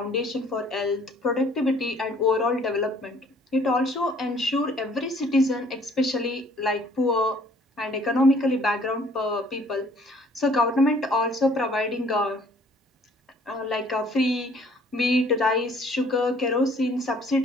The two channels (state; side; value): normal; both; correlation 0.58